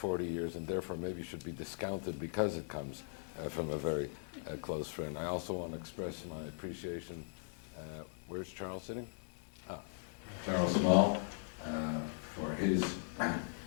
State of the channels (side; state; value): right; silent; digital silence